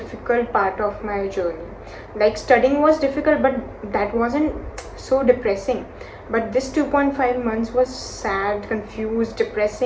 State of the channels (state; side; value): identical; both; correlation 1.00